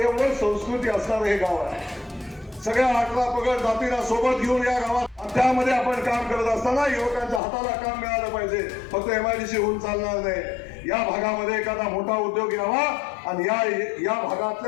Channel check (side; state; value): right; drops out; at 7.4 s